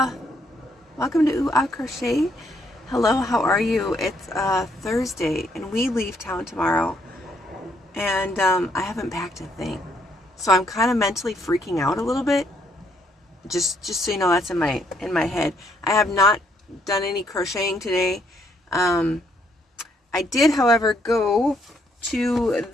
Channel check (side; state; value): both; normal; correlation 0.71